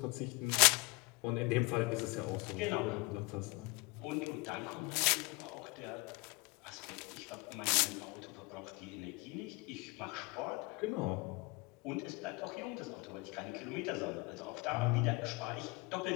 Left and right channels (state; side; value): quieter; right; 25.6 dB